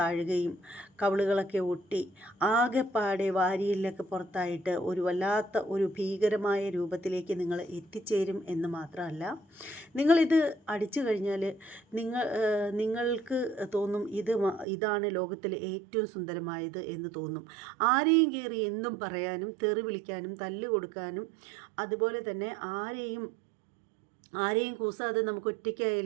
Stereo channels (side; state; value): left; drops out; at 14.7 s